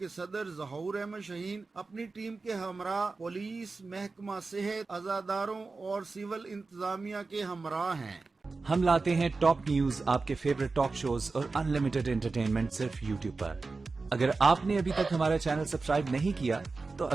सदर ज़हूर अहमद शहीन अपनी टीम के हमरा पुलिस, महकमा सेहत, अज़ादारों और सिविल इंतजामिया के हमरा हैं। हम लाते हैं टॉप न्यूज, आपके फेवरेट टॉक शोज और अनलिमिटेड एंटरटेनमेंट सिर्फ यूट्यूब पर। अगर आपने अभी तक हमारा चैनल सब्सक्राइब नहीं किया तो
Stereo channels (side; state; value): left; quieter; 3.9 dB